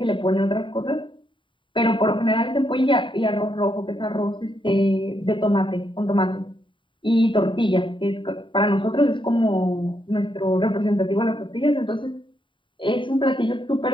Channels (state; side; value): late; right; 0.24 ms